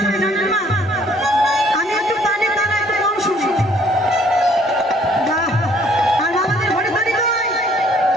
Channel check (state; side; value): normal; both; correlation 0.60